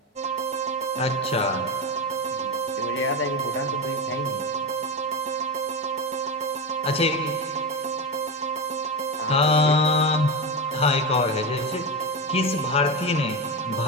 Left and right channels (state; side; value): normal; both; correlation 0.17